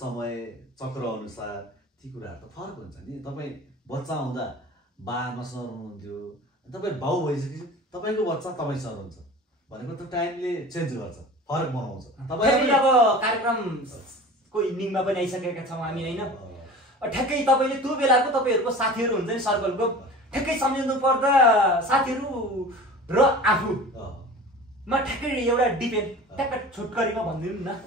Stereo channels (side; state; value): both; normal; correlation 0.38